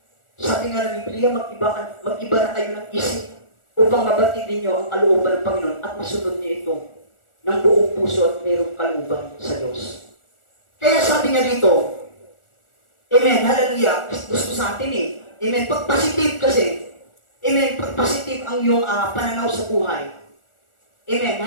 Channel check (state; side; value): late; right; 1.4 ms